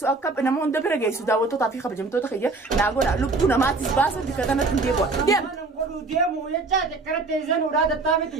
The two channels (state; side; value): quieter; left; 3.6 dB